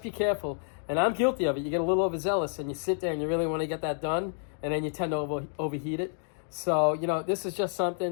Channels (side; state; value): right; silent; 58 dB below the other